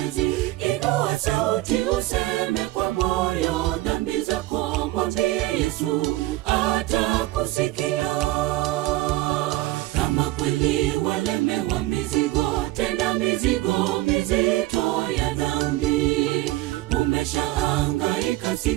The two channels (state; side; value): quieter; left; 17.7 dB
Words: Inua sauti useme kwa moyo dhambi zako, mwambie Yesu atakusikia. Kama kweli walemewa mizigo, tena mizigo mizito ya dhambi, umeshahangaika